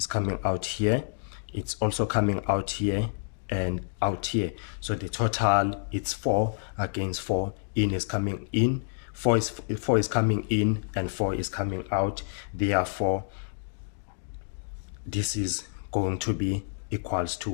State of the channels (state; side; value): silent; right; digital silence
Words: coming out here, it's also coming out here and out here. So the total it's 4 against 4. In is coming in, 4 is coming in, and 4 is coming out. Therefore this is going to be equals